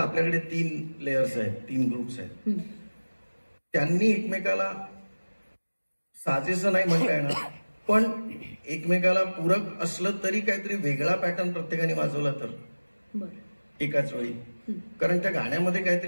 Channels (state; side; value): inverted; both; correlation -1.00